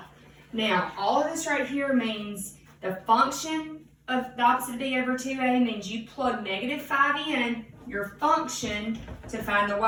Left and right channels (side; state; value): both; identical; correlation 1.00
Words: Now, all of this right here means the function of the opposite of b over 2a means you plug -5 in your function to find the